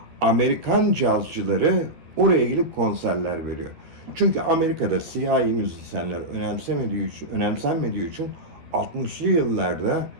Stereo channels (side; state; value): left; late; 12 ms